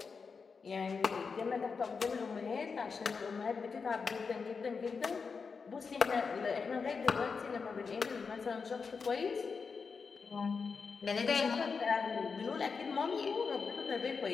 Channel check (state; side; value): quieter; right; 5.2 dB